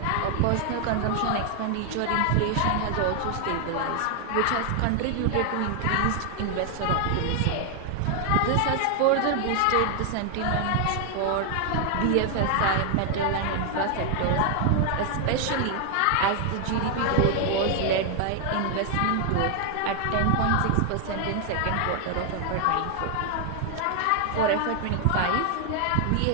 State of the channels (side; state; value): both; different; correlation 0.00